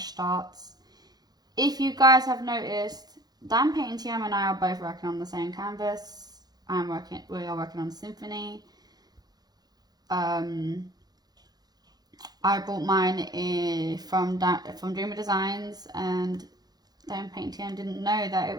starts. If you guys have noticed, Dan Painting TM and I are both working on the same canvas. We are working on Symphony. I bought mine from Dreamer Designs, and Dan Painting TM didn't know that it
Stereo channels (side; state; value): left; late; 0.19 ms